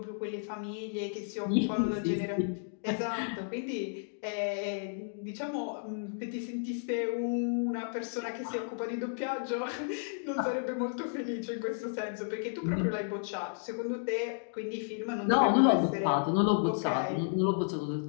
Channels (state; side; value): silent; right; digital silence